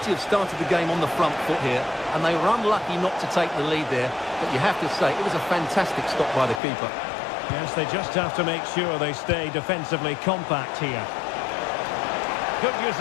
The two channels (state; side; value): drops out; right; at 6.6 s